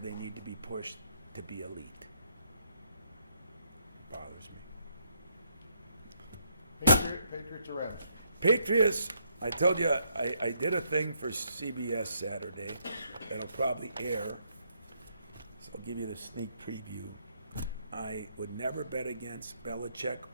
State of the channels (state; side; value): inverted; both; correlation -0.74